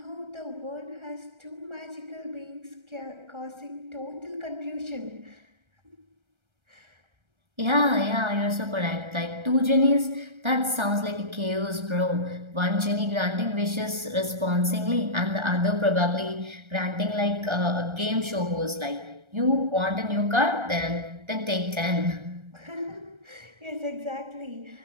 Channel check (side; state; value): left; late; 1.3 ms